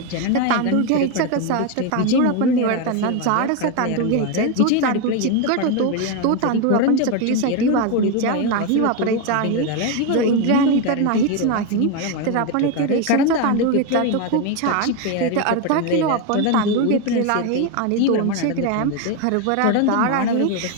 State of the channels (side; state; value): both; different; correlation 0.02